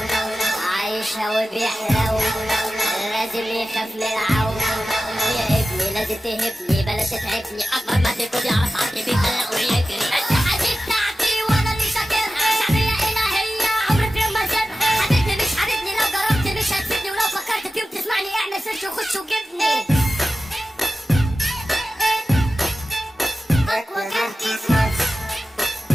عايشها وبيحلو، لازم يخاف من العو. يا ابني لازم تهبني بلاش تتعبني، اكبر ما تكون يعرف عقلي بيخلق ويجري. الصحة دي بتاعتي وانا اللي شاكرها، شعبية الهية عمري في يوم ما سيبها. حبيبني مش حبيبني، لو جربت مش هتفيدني، ولو فكرت في يوم تسمعني اعمل سيرش وخش وجبني. اقوى كارت في مصر،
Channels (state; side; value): normal; both; correlation 0.94